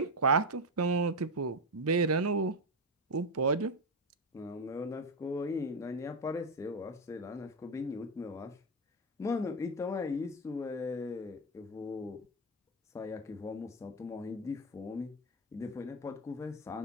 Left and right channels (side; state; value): both; normal; correlation 0.08